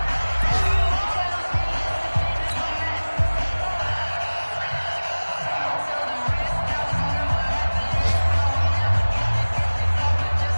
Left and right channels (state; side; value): inverted; both; correlation -1.00